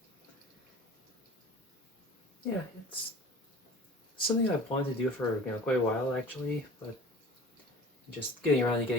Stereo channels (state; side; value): normal; both; correlation 0.42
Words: yeah, it's something I've wanted to do for quite a while actually, but just getting around to